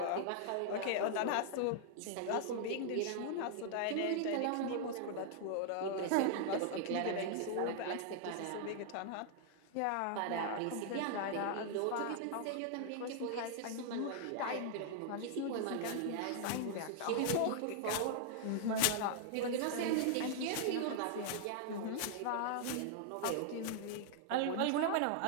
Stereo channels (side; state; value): both; different; correlation -0.01